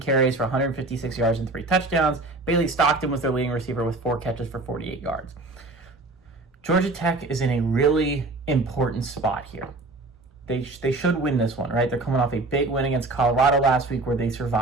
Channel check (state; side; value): quieter; left; 3.1 dB